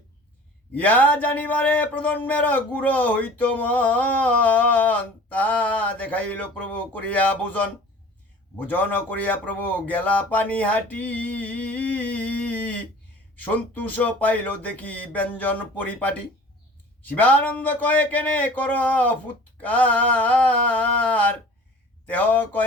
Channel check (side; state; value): both; normal; correlation 0.44